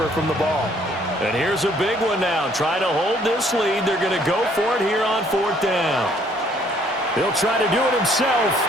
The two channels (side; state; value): both; normal; correlation 0.63